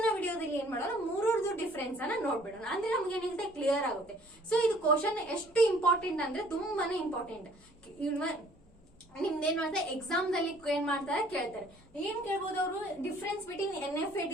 ವಿಡಿಯೋದಲ್ಲಿ ಏನ್ ಮಾಡೋಣ, ಮೂರರದು ಡಿಫರೆನ್ಸ್ ಅನ್ನ ನೋಡ್ಬಿಡೋಣ. ಅಂದ್ರೆ ನಮ್ಗೆ ಏನಿರುತ್ತೆ ಕ್ಲಿಯರ್ ಆಗುತ್ತೆ. ಸೊ ಇದು ಕ್ವಶನ್ ಎಷ್ಟು ಇಂಪಾರ್ಟೆಂಟ್ ಅಂದ್ರೆ ತುಂಬಾನೇ ಇಂಪಾರ್ಟೆಂಟ್. ನಿಮ್ದೇನು ಅಂದ್ರೆ ಎಕ್ಸಾಮ್ ದಲ್ಲಿ ಏನ್ ಮಾಡ್ತಾರೆ, ಕೇಳ್ತಾರೆ. ಏನ್ ಕೇಳ್ಬೋದು ಅವರು, ಡಿಫರೆನ್ಸ್ ಬಿಟ್ವೀನ್ NFA,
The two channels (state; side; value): noise; left; hum, 29 dB below the sound